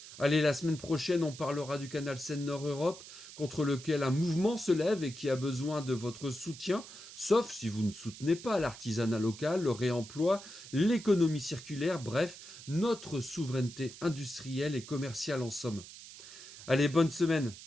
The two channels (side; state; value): right; noise; hiss, 15 dB below the sound